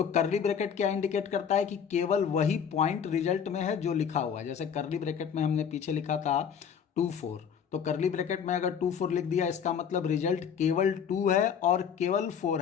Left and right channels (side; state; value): right; quieter; 7.6 dB